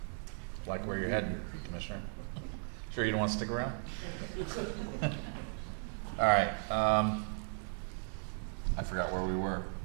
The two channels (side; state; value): left; silent; 54 dB below the other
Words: Like where you're heading, Commissioner. Sure you don't want to stick around? All right, I forgot where we were.